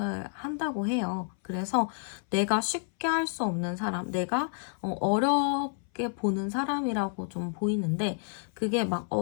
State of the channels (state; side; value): silent; right; 58 dB below the other